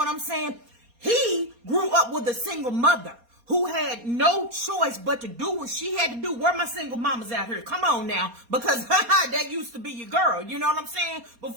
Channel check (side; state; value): left; late; 4.2 ms